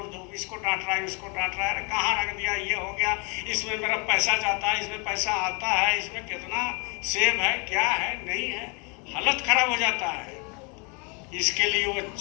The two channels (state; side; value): quieter; right; 32.5 dB